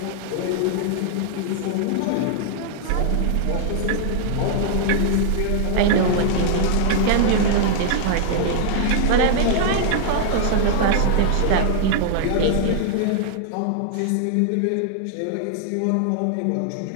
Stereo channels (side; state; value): both; different; correlation -0.01